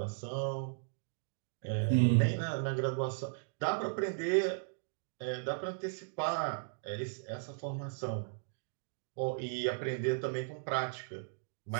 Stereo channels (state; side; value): silent; left; digital silence